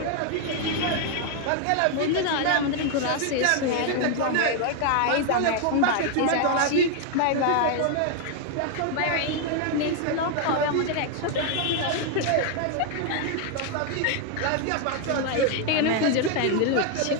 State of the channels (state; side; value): different; both; correlation 0.00